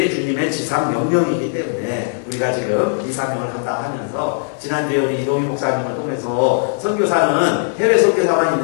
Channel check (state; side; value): silent; right; digital silence